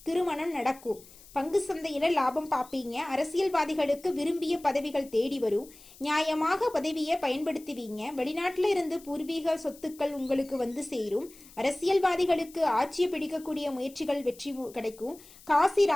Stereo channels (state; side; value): noise; left; hiss, 22 dB below the sound